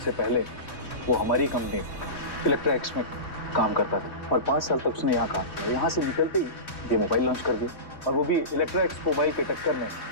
पहले वो हमारी कंपनी इलेक्ट्रा एक्स में काम करता था और 5 साल तक उसने यहाँ काम किया। यहाँ से निकलते ही ये मोबाइल लॉन्च कर दिया, और वो भी इलेक्ट्रा एक्स मोबाइल के टक्कर में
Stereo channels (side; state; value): right; late; 3.2 ms